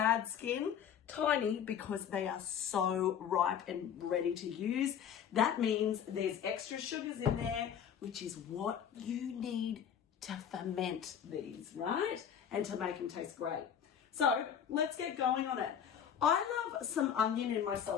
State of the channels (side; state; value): right; quieter; 8.6 dB